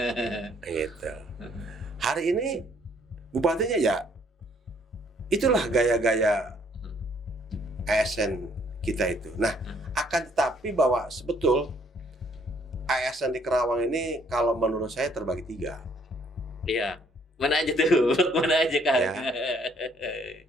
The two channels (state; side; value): normal; both; correlation 0.64